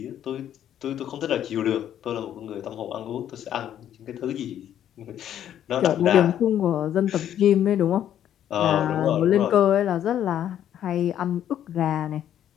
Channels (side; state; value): right; quieter; 10.6 dB